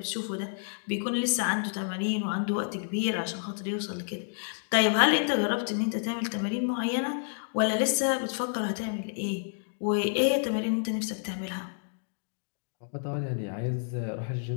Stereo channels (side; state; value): right; silent; digital silence